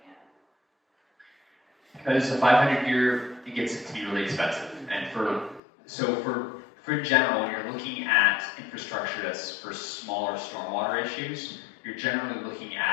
Because the 500-year, it gets to be really expensive. And for in general, when you're looking at infrastructure that's for smaller stormwater issues, you're generally looking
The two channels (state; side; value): drops out; right; at 5.6 s